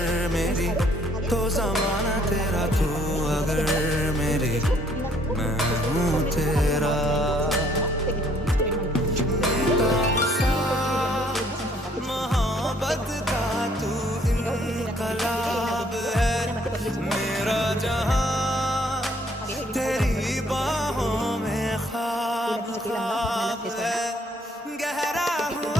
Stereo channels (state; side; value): normal; both; correlation 0.64